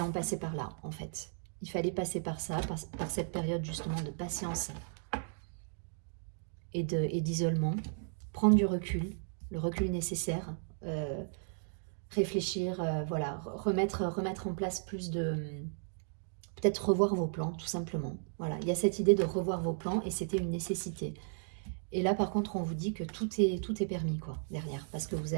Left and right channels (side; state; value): left; silent; digital silence